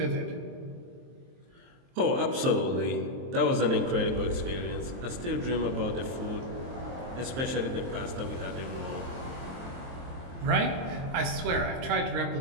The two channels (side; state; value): left; late; 23 ms